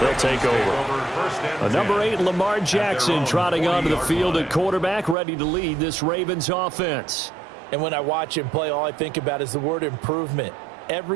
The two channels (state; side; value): drops out; left; at 5.2 s